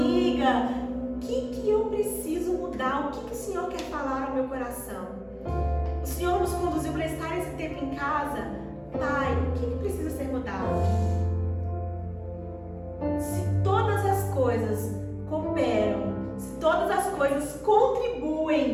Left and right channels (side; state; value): both; identical; correlation 1.00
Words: O que eu preciso mudar? O que o Senhor quer falar ao meu coração? O Senhor nos conduziu para estar esse tempo em casa. Pai, o que precisa ser mudado? Se todas as coisas cooperam, se todas as coisas